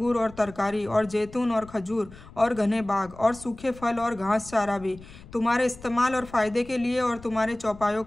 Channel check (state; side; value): noise; left; rumble, 19 dB below the sound